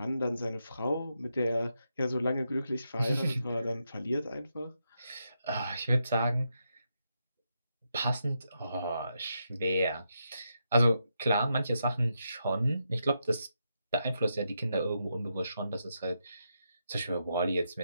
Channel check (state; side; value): inverted; both; correlation -0.83